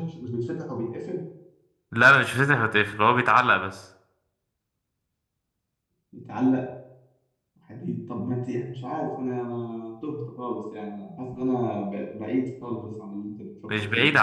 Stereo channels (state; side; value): identical; both; correlation 1.00